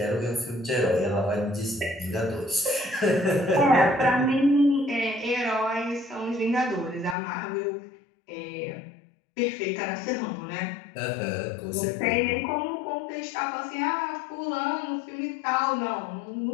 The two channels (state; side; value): drops out; right; at 7.2 s